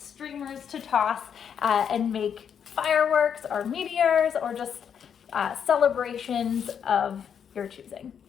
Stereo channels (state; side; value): quieter; right; 7.9 dB